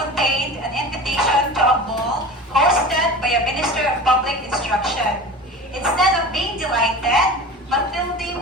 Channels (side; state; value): both; normal; correlation 0.35